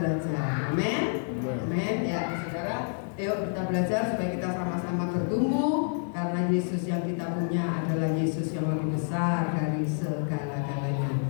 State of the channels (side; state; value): right; silent; digital silence